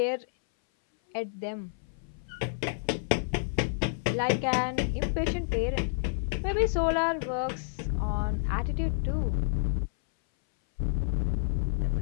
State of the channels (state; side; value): silent; right; 58 dB below the other